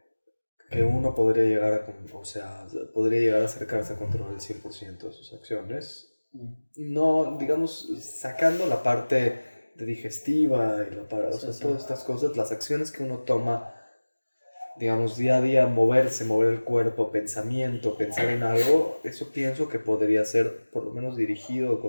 que uno podría llegar o sea, podría llegar a acercarse a controlar el 100% de sus acciones. Mm. No, digamos, sacando la parte de digestiva y o Sí, sea, sí. todas estas cosas, las acciones que uno toma, digamos, día a día, moverse, mover el cuerpo, pensamiento, pensar en algo, eso pienso que podría ser por lo menos dirigido o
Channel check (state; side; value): inverted; both; correlation -1.00